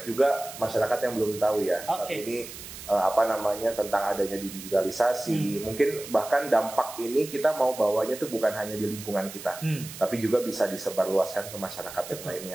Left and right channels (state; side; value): noise; right; hiss, 13 dB below the sound